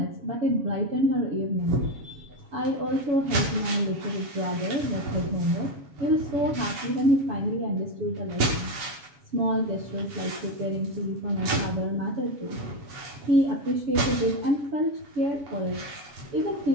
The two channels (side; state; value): left; late; 7.2 ms